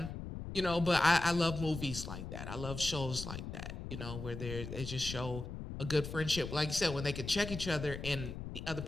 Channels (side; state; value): left; noise; rumble, 8 dB below the sound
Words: You know, but I love movies like that. I love shows like that, you know, where they just show a good friendship. Like you said, when they could check each other and the other